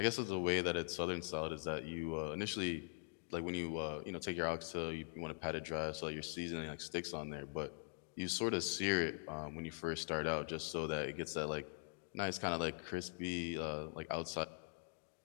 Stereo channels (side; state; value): right; silent; digital silence